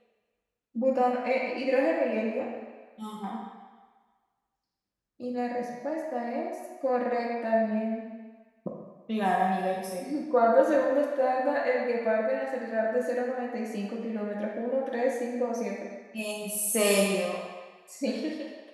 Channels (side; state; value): both; identical; correlation 1.00